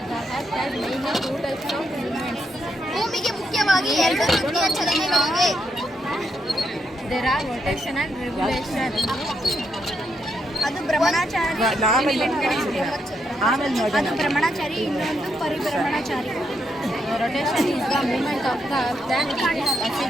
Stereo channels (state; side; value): normal; both; correlation 0.79